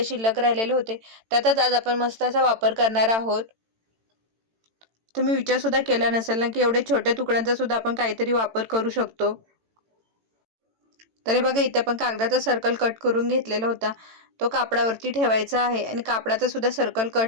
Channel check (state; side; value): late; left; 18 ms